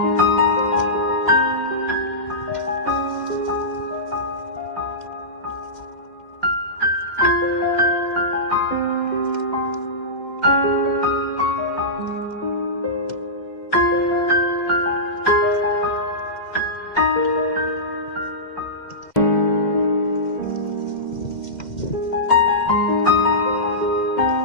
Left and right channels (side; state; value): right; late; 2.1 ms